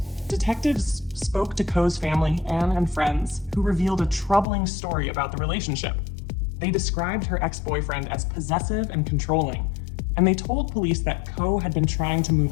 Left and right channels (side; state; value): right; drops out; at 4.5 s